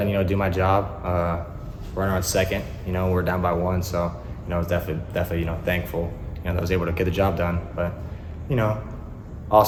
do my job. Runner on second, we're down by 1, so, I was definitely, thankful, that I was able to get the job done. But,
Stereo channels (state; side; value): identical; both; correlation 1.00